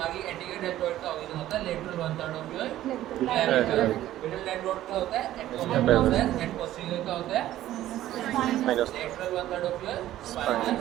एंटीरियर डेल्टोइड का ओरिजिन होता है lateral 1/3 of your clavicle, middle deltoid का होता है एक्रोमियन प्रोसेस एंड पोस्टीरियर का होता है lateral 1/3 of your spinal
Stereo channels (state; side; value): quieter; left; 13.7 dB